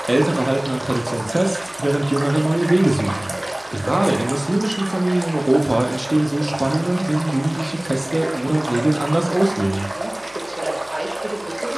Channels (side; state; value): right; noise; hum, 27 dB below the sound